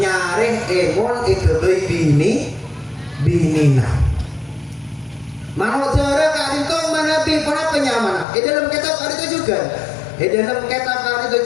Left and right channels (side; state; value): right; drops out; at 8.2 s